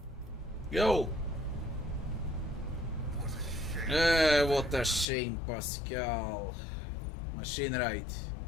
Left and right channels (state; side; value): drops out; right; at 5.1 s